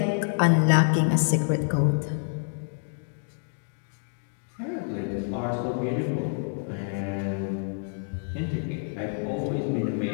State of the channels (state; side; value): silent; right; digital silence